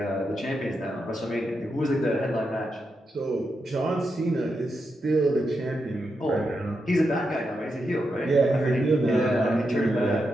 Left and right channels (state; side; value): normal; both; correlation 0.85